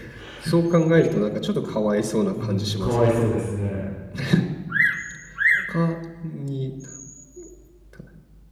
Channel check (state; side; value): identical; both; correlation 1.00